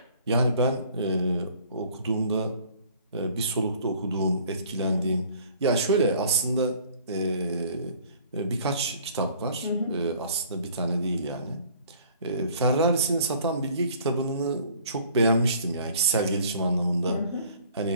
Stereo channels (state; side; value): inverted; both; correlation -0.54